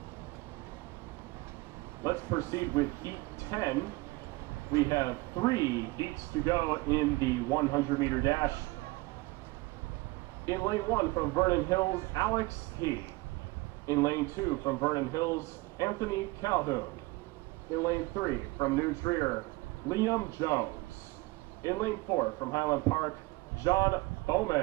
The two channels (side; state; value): left; quieter; 22.8 dB